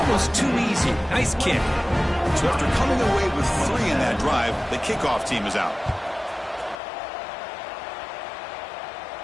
too easy. Nice kick. So after coming away with 3 in that drive, the kickoff team is out.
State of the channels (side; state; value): right; drops out; at 6.8 s